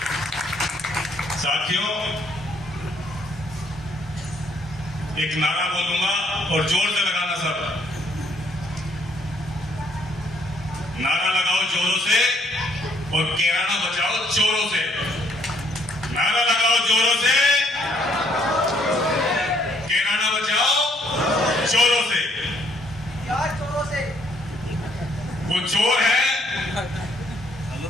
साथियों, एक नारा बोलूंगा और जोर से लगाना सब। नारा लगाओ जोरों से और किराना बचाओ चोरों से। नारा लगाओ जोरों से, किराना बचाओ चोरों से। वो चोर है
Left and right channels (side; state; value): both; normal; correlation 0.68